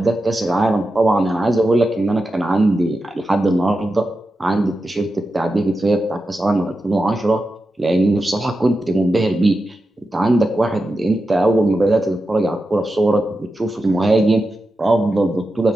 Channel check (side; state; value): both; normal; correlation 0.90